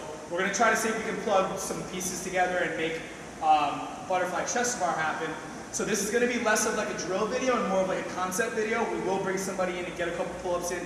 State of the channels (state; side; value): identical; both; correlation 1.00